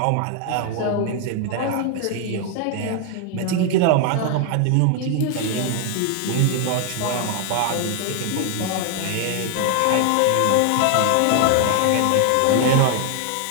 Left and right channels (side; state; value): both; different; correlation 0.00